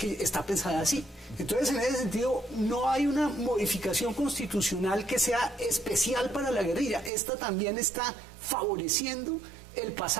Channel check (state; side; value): drops out; left; at 7.1 s